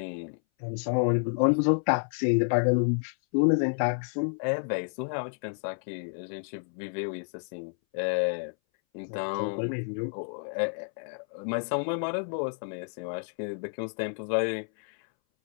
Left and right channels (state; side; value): silent; right; 58 dB below the other